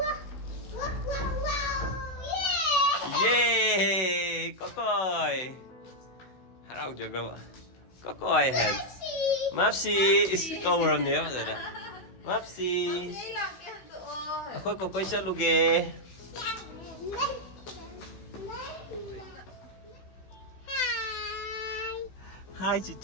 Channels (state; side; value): late; right; 16 ms